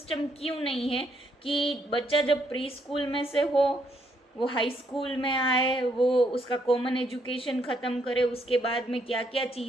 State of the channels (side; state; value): both; normal; correlation 0.73